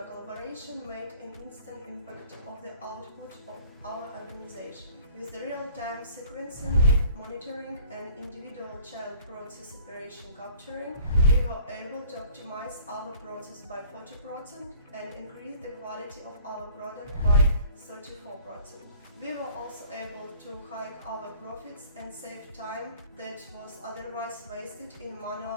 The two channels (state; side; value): inverted; both; correlation -0.50